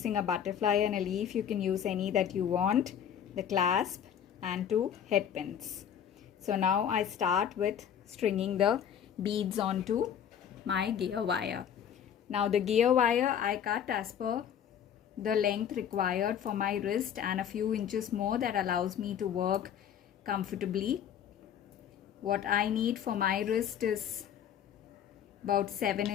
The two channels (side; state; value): right; quieter; 8.9 dB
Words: a butterfly and a leaf. You can use any that you want, the clasp, and 2 head pins. So now I start with stringing the beads onto my gear wire. Now the gear wire I cut as per the length required for my wrist and a few inches more that allows me to work comfortably. What I need for my wrist is about 7